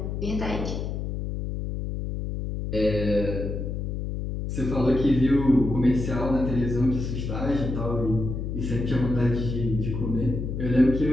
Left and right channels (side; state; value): left; noise; hum, 4 dB below the sound